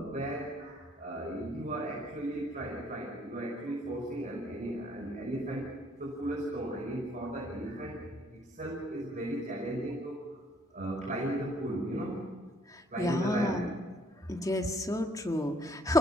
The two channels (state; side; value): normal; both; correlation 0.64